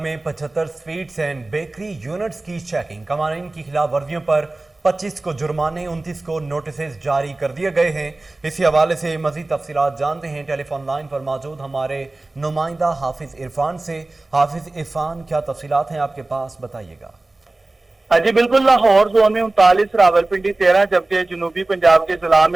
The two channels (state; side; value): quieter; left; 3.0 dB